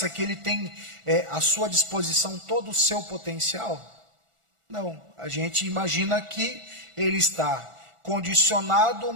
que ele tem à sua disposição todo o seu potencial. Não, a gente imagina que ele está condicionado,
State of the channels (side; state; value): left; late; 1.4 ms